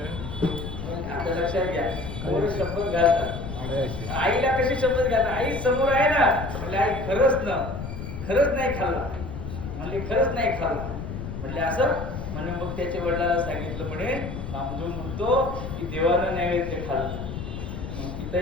आता लक्षात घ्या, पोरं शपथ घालतात. आईला कशी शपथ घालतात? आई समोर आहे ना. म्हणजे आई खरंच नाही खाल्ला. म्हणले खरंच नाही खाल्ला. म्हणले असं म्हणे. मग त्याच्या वडिलांना सांगितलं. म्हणे नामदेव म्हणतो की देवानं नैवेद्य खाल्लं. मग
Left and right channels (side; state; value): left; noise; rumble, 7 dB below the sound